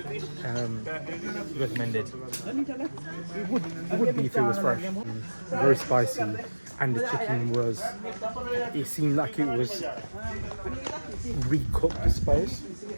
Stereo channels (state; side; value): inverted; both; correlation -1.00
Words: Recommended. It would be if it was fresh. Very spicy, and the chicken was, it seemed like it was recooked, I suppose.